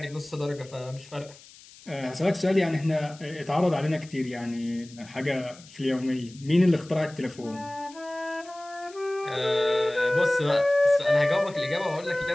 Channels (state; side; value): noise; left; hiss, 22 dB below the sound